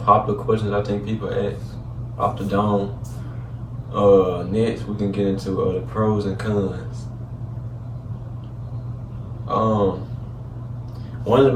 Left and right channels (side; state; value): both; identical; correlation 1.00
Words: questions I think people ask off the dome. Next we can get into the pros and cons. One of